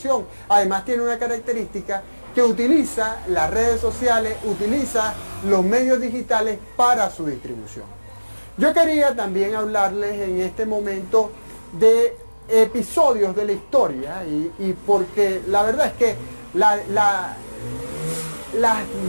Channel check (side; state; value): both; inverted; correlation -1.00